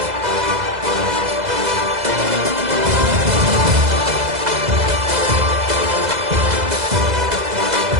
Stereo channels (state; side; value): late; left; 2.0 ms